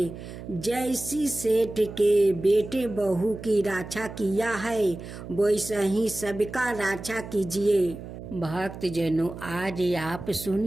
जैसी सेठ के बेटे बहू की रक्षा किया है वैसा ही सबका रक्षा कीजिए। भक्त जनों, आज आप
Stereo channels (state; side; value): noise; right; hum, 12 dB below the sound